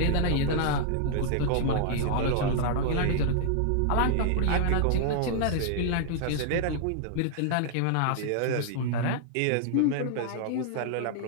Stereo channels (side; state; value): both; different; correlation -0.01